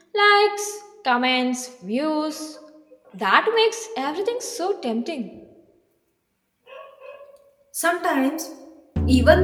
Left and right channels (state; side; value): identical; both; correlation 1.00